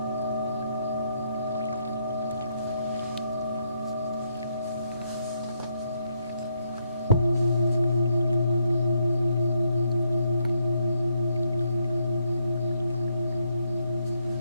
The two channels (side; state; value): both; inverted; correlation -0.76